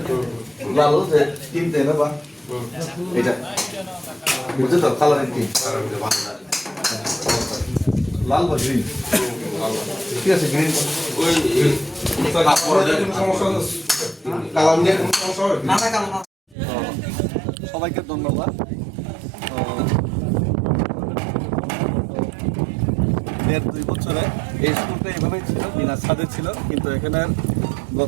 লাল যে তিন দেয় না বা এটা বুঝছো তো কালারের তিন লাল বা গ্রিন ঠিক আছে গ্রিন ওই সমস্যা কালার নিয়ে কোনো সমস্যা হবে ना ना काम ना সবাইকে ধন্যবাদ দেড় দুই বছরে এই স্কুলটা এইভাবেই ছিল বিনা ছাদে ছিল কিন্তু এখানে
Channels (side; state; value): left; drops out; at 16.6 s